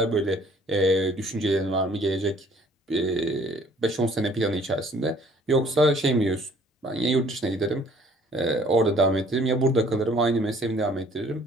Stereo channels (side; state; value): both; normal; correlation 0.57